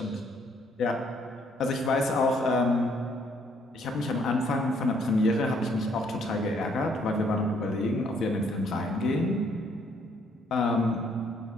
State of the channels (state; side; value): normal; both; correlation 0.67